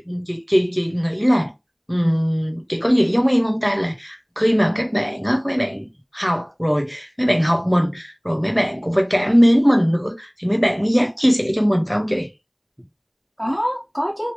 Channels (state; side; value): identical; both; correlation 1.00